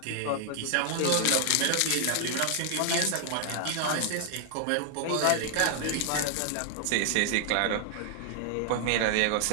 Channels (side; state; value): both; different; correlation 0.00